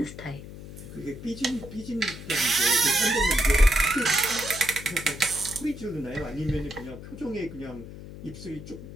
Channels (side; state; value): left; noise; hum, 13 dB below the sound